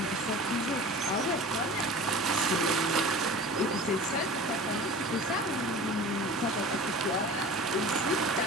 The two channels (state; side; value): normal; both; correlation 0.38